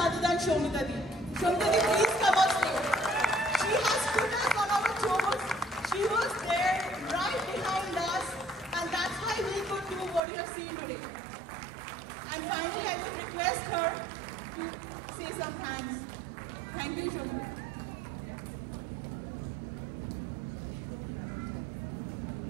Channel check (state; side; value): drops out; left; at 10.2 s